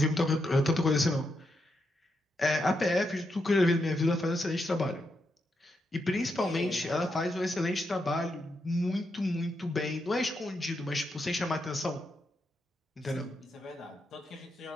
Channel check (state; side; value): normal; both; correlation 0.83